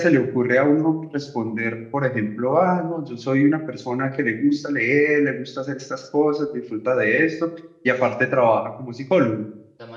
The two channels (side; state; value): both; identical; correlation 1.00